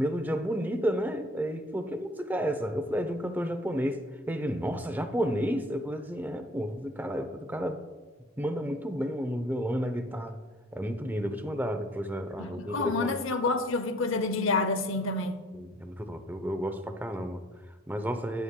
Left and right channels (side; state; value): both; normal; correlation 0.57